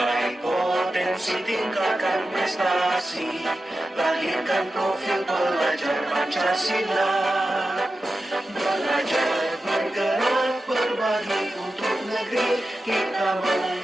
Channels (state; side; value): normal; both; correlation 0.92